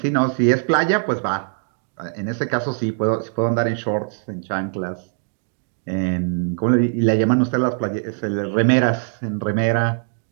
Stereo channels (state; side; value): silent; left; digital silence